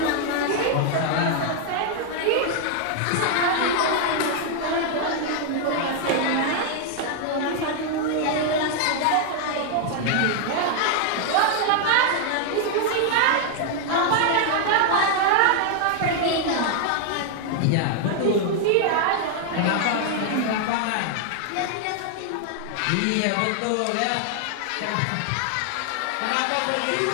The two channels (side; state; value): both; different; correlation 0.00